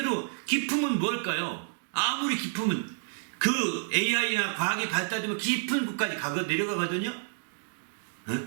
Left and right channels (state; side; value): silent; left; 58 dB below the other